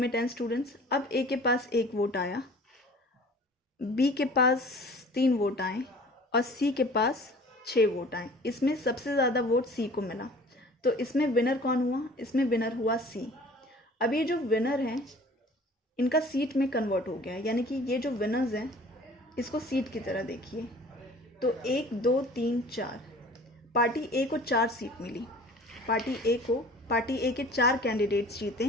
10 स्टूडेंट्स, अब ए के पास 1 वोट आया, बी के पास 3 वोट आए और सी के पास 6 वोट आए। इसमें सबसे ज़्यादा वोट सी को मिला, तो इसमें विनर कौन हुआ? इसमें विनर हुआ सी। अब ये जो विनर हैं इनका सीट में कन्वर्ट हो गया है, यानी कि ये जो विनर्स हैं इसको सीट की तरह देखिए। तो 1 2 3 4, पार्टी ए को 4 सीट मिली, पार्टी ए के 4 कैंडिडेट्स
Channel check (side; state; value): both; normal; correlation 0.47